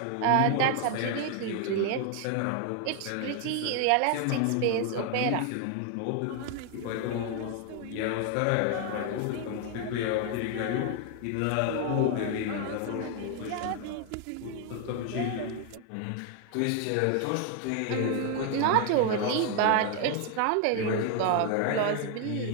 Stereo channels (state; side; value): different; both; correlation 0.00